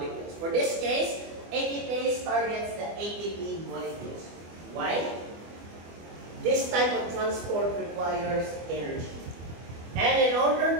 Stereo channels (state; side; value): late; left; 24 ms